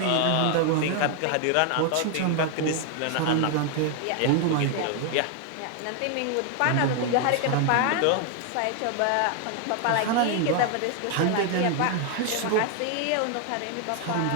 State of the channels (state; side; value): different; both; correlation 0.00